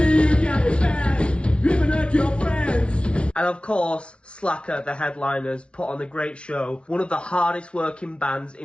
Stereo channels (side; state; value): right; late; 0.059 ms